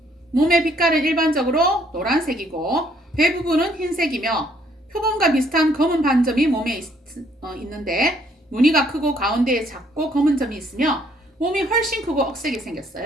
몸의 빛깔은 일반적으로 노란색이고 배 부분은 흰색이며 표범과 비슷한 검은 반점이 몸에 있는데 무늬가 크고 가운데에 작고 검은 점이 있으며 몸이 훨씬 크고 억세게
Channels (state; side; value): normal; both; correlation 0.66